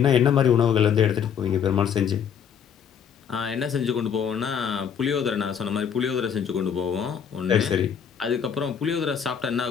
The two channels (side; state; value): right; quieter; 7.8 dB